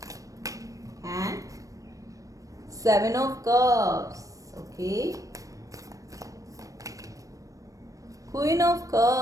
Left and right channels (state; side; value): late; left; 0.16 ms